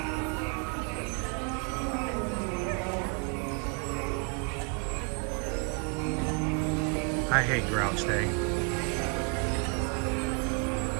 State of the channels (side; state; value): left; quieter; 36.9 dB